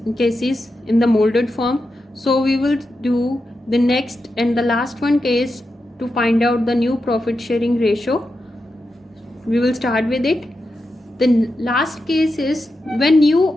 cases in the molded form. So we will do the next and the last one case to find out the new profit sharing ratio. We will start with it. The last case is when new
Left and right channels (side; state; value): both; normal; correlation 0.88